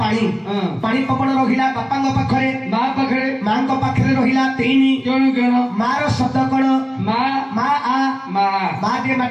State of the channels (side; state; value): both; identical; correlation 1.00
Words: पानी पवन रहिला बापा पाखरे ମା ପାଖରେ माँ पाखरे रहिला 3 କଣ କଣ मार शब्द कण ମା माँ आ ମା माँ जे